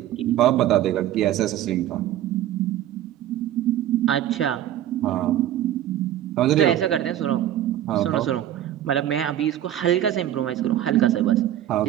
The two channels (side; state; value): left; quieter; 12.1 dB